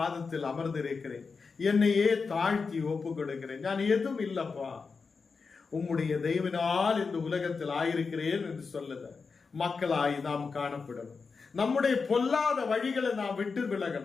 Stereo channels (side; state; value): right; quieter; 4.9 dB